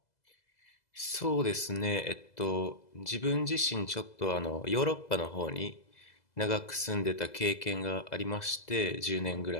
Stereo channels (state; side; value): late; right; 2.0 ms